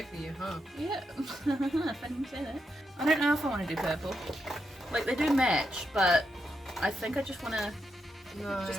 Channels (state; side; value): normal; both; correlation 0.83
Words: for you, huh? Yeah. If I didn't say that. I don't know if I want to do purple. Like, they do match, but I think I just want to... No.